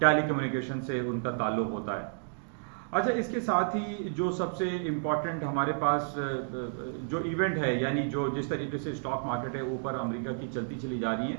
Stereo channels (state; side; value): silent; left; digital silence